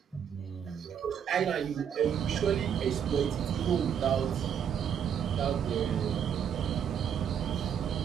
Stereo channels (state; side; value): quieter; left; 8.3 dB